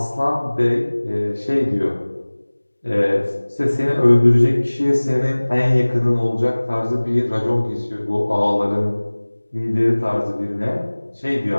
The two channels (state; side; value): inverted; both; correlation -1.00